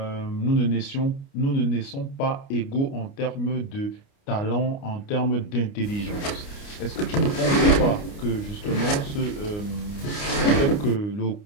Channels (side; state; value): right; late; 29 ms